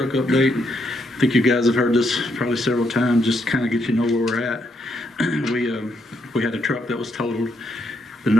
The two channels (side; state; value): both; normal; correlation 0.77